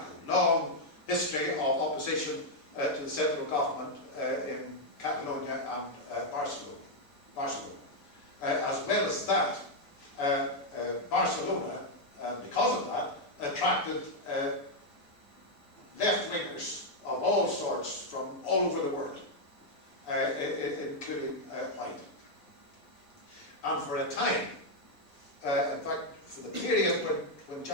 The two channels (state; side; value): late; right; 6.9 ms